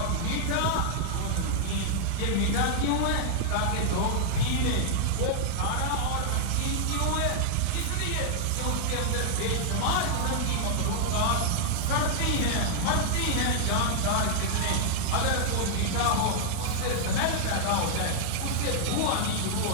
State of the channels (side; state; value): both; different; correlation -0.01